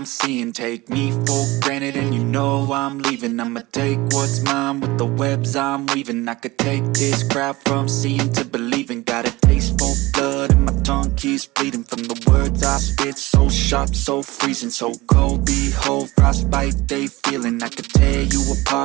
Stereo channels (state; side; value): quieter; left; 20.5 dB